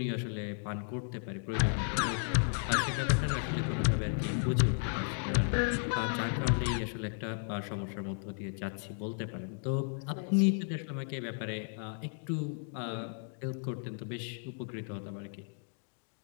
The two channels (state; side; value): silent; right; 55 dB below the other